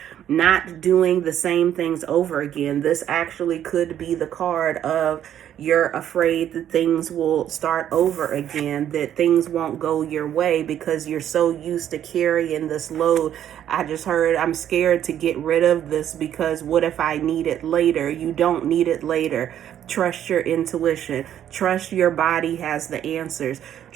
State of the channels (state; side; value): quieter; left; 10.5 dB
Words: Not doing the same things over again. This actually could be the card of you're afraid that things will start over again, that things won't go your way because you're so used to carrying this load. I just heard I'm scared to get rid of this because what if I need it later? You don't need it later. Trust your intuition. Trust your body has the answers.